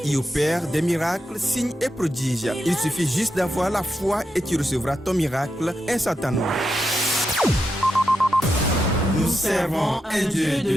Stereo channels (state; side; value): normal; both; correlation 0.86